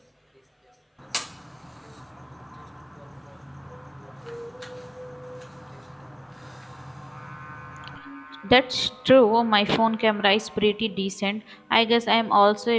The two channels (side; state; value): both; identical; correlation 1.00